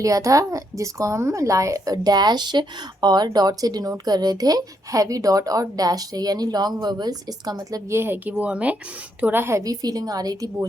था, जिसको हम डैश और डॉट से डिनोट कर रहे थे, हैवी डॉट और डैश से। यानी लॉन्ग वोवेल्स, इसका मतलब ये है कि वो हमें थोड़ा हैवी फीलिंग आ रही थी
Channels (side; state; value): both; normal; correlation 0.76